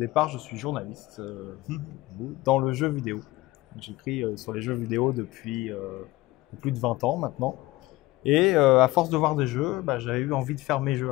je suis journaliste dans le jeu vidéo. J'écris sur les jeux vidéo depuis plus de 20 ans maintenant. Et à force de voir des jeux, j'avais eu envie de faire mes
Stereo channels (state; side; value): quieter; right; 18.8 dB